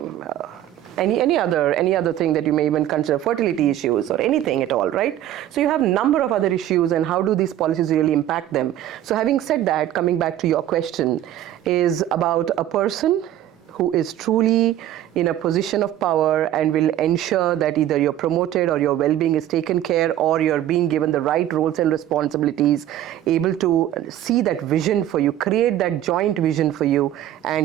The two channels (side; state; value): left; quieter; 12.4 dB